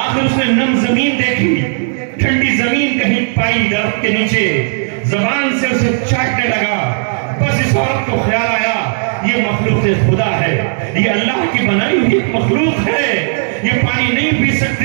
اس نے نم زمین دیکھی، ٹھنڈی زمین کہیں پائی درخت کے نیچے، زبان سے اسے چاٹنے لگا۔ بس اس عورت کو خیال آیا یہ مخلوق خدا ہے، یہ اللہ کی بنائی ہوئی ایک مخلوق ہے، یہ پانی نہیں پی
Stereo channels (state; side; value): silent; left; 69 dB below the other